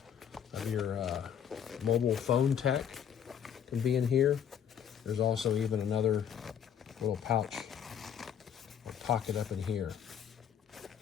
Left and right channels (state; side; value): quieter; right; 8.7 dB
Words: of your mobile phone tech can be in here. There's also even another little pouch or pocket up in here.